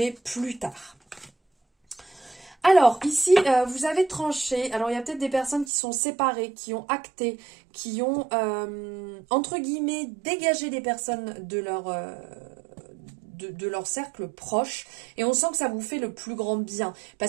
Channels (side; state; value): left; drops out; at 5.7 s